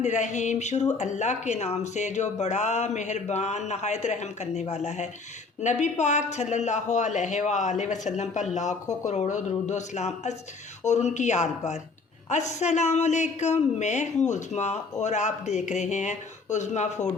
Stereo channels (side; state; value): right; quieter; 4.2 dB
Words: शुरू अल्लाह के नाम से जो बड़ा मेहरबान नहायत रहम करने वाला है। नबी पाक सल्लल्लाहु अलैहि वसल्लम पर लाखों करोड़ों दरूद व सलाम और उनकी आल पर। अस्सलाम वालेकुम, मैं हूँ उज़्मा और आप देख रहे हैं उज़्मा फूड